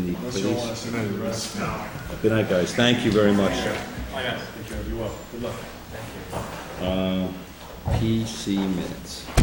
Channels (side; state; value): both; identical; correlation 1.00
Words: the police. Good night, guys. Thank you very much. You're welcome. Good luck. PC minutes.